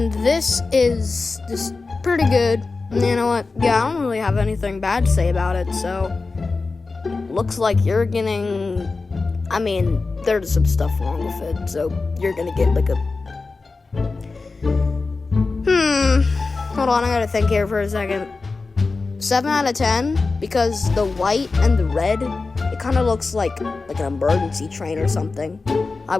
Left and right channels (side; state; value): right; quieter; 3.9 dB